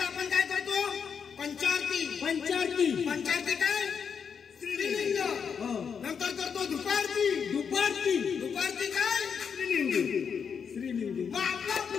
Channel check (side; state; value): right; quieter; 6.7 dB